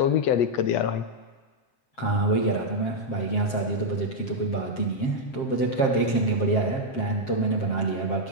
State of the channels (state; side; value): late; right; 7.5 ms